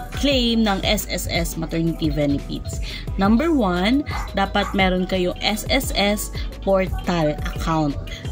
ng SSS maternity benefits. Number 1, dapat meron kayong SSS portal account.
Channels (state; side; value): identical; both; correlation 1.00